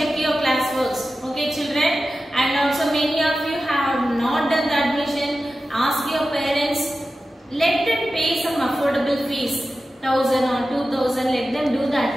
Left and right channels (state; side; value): normal; both; correlation 0.93